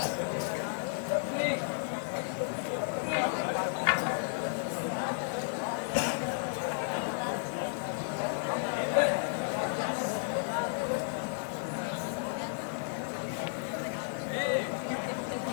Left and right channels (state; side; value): silent; right; digital silence